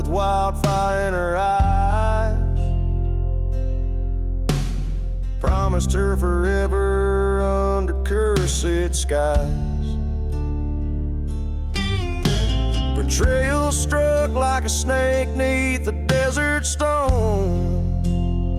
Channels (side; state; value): both; identical; correlation 1.00